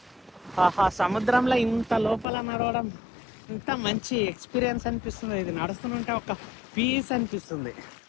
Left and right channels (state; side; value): drops out; right; at 2.2 s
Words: ఆహా, సముద్రంలో ఇంత లోపల నడవడం ఇంత మంచి ఎక్స్పీరియన్స్ అనిపిస్తుంది. ఇది నడుస్తుంటే ఒక పీస్ అనిపిస్తుంది.